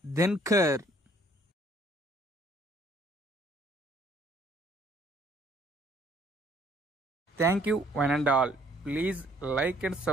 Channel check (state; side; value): normal; both; correlation 0.61